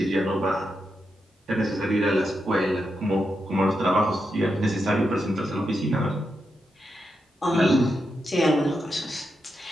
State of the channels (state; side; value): normal; both; correlation 0.85